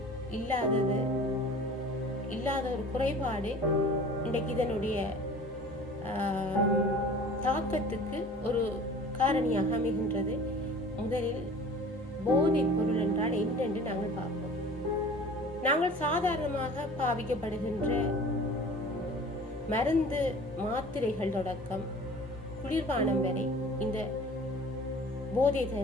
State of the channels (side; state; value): both; normal; correlation 0.44